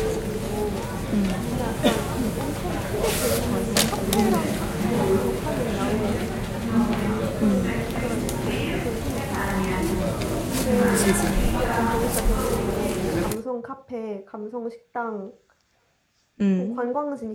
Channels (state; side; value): identical; both; correlation 1.00